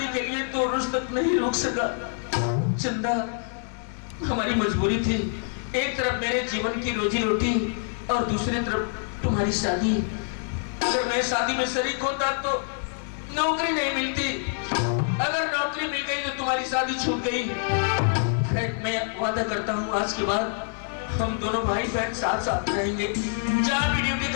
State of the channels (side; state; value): right; silent; 60 dB below the other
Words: के लिए 2 रोज तक नहीं रुक सका। चंदा, हमारी मजबूरी थी, एक तरफ मेरे जीवन की रोजी रोटी और दूसरी तरफ तुम्हारी शादी। अगर मैं शादी में शरीक होता तो नौकरी नहीं मिलती, अगर नौकरी मिल गई तो तुम्हारी शादी छूट गई। खैर, मैं वादा करता हूँ आज के बाद हम दोनों भाई बहन साथ साथ रहेंगे, जहाँ भी ड्यूटी